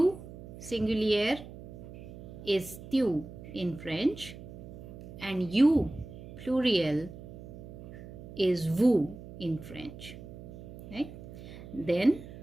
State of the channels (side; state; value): right; noise; hum, 14 dB below the sound